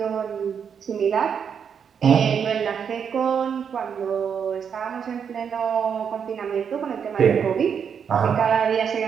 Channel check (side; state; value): left; quieter; 7.2 dB